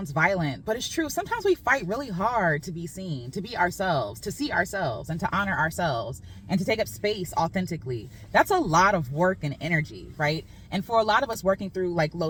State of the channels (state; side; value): identical; both; correlation 1.00